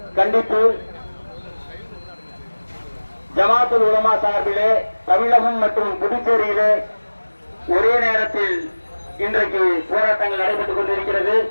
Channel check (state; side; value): inverted; both; correlation -1.00